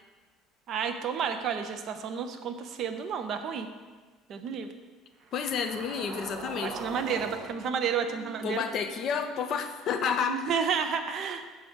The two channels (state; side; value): normal; both; correlation 0.45